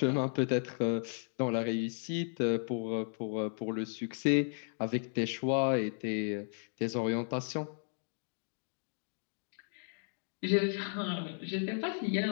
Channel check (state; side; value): silent; right; 55 dB below the other